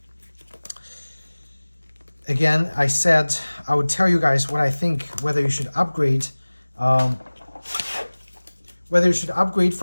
again, I said I would tell you guys what I think, whether you should upgrade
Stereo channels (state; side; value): inverted; both; correlation -1.00